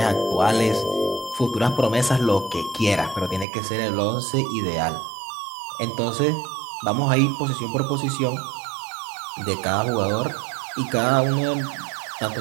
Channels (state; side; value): drops out; left; at 3.5 s